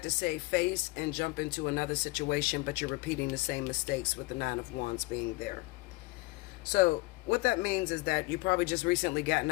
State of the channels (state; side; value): quieter; right; 23.1 dB